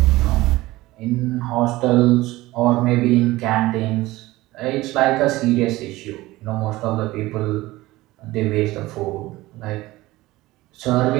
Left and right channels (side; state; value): left; quieter; 18.5 dB